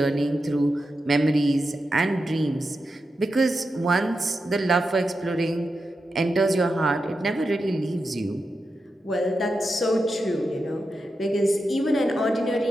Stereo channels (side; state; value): both; normal; correlation 0.89